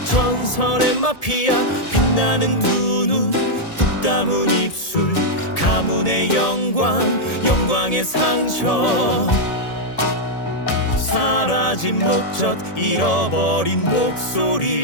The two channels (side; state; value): right; late; 1.7 ms